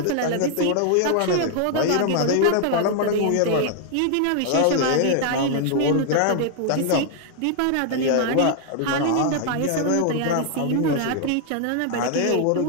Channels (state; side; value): different; both; correlation 0.00